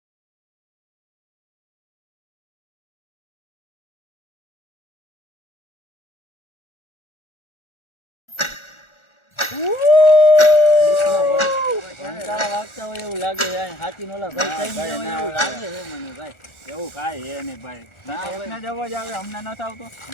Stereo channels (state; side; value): late; right; 1.4 ms